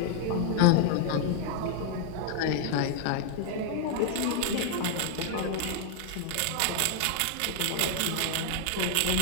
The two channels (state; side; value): different; both; correlation -0.01